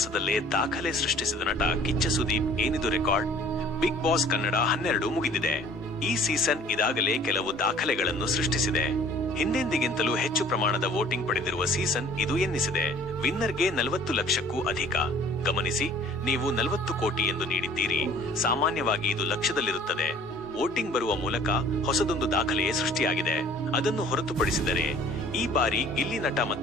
ದಾಖಲೆ ಸೃಷ್ಟಿಸಿದ ನಟ ಕಿಚ್ಚ ಸುದೀಪ್ ಏನಿದು ರೆಕಾರ್ಡ್. ಬಿಗ್ ಬಾಸ್ ಕನ್ನಡ 12 ಮುಗಿದಿದೆ. ಈ ಸೀಸನ್ ಇದಾಗಲೇ ಕೆಲವು ದಾಖಲೆಗಳನ್ನು ಸೃಷ್ಟಿಸಿದೆ. ಹಿಂದೆಂದಿಗಿಂತಲೂ ಹೆಚ್ಚು ಪ್ರಮಾಣದ ವೋಟಿಂಗ್ ಪಡೆದಿರುವ ಸೀಸನ್ ಇದು ಎನ್ನಿಸಿದೆ. ವಿನ್ನರ್ಗೆ 40 ಲಕ್ಷಕ್ಕೂ ಅಧಿಕ. ಗಮನಿಸಿ, ನೀವು 40 ಕೋಟಿ ಎಂದು ನೀಡಿದ್ದೀರಿ. ಸಾಮಾನ್ಯವಾಗಿ ಇದು ಲಕ್ಷದಲ್ಲಿರುತ್ತದೆ. ವೋಟಿಂಗ್ ಬರುವ ಮೂಲಕ ಹೊಸದೊಂದು ದಾಖಲೆಯೇ ಸೃಷ್ಟಿಯಾಗಿದೆ. ಅದನ್ನು ಹೊರತುಪಡಿಸಿದರೆ ಈ ಬಾರಿ ಗಿಲ್ಲಿ ನಟ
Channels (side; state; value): both; normal; correlation 0.51